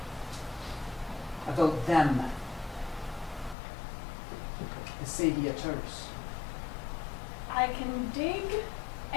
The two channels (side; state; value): right; drops out; at 3.6 s